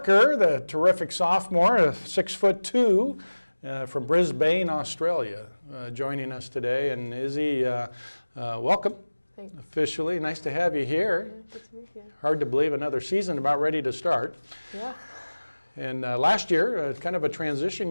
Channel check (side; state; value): both; inverted; correlation -1.00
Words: the terrific sophomore, 6'2", from Brisbane, Australia, joining us today. And Izzy, welcome. Thanks. Officially. Nice to have you here. Good to meet you. Hard to believe another season about ready to start. Yeah. And last year, kind of a transition